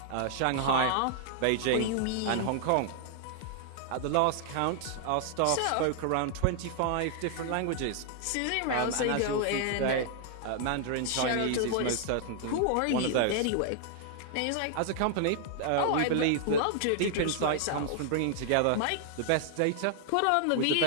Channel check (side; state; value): both; different; correlation 0.00